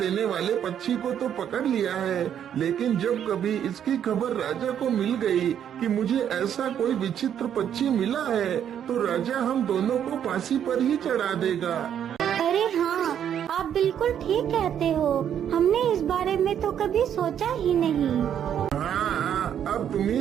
वाले पक्षी को तो पकड़ लिया है, लेकिन जब कभी इसकी खबर राजा को मिल गई कि मुझे ऐसा कोई विचित्र पक्षी मिला है, तो राजा हम दोनों को फांसी पर ही चढ़ा देगा। अरे हाँ, आप बिल्कुल ठीक कहते हो। हमने इस बारे में तो कभी सोचा ही नहीं। हाँ, अब तुम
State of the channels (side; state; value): left; quieter; 9.3 dB